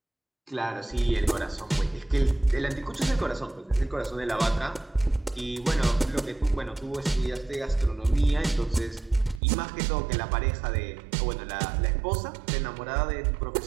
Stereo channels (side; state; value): left; drops out; at 9.4 s